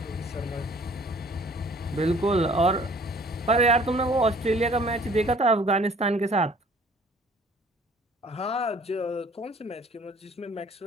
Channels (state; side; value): normal; both; correlation 0.55